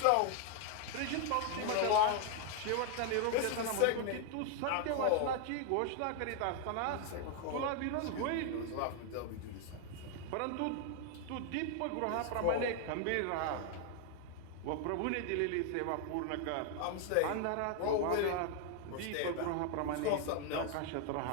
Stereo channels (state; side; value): different; both; correlation 0.00